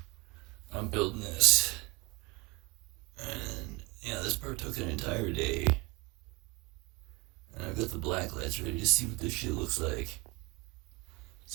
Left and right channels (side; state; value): left; quieter; 25.9 dB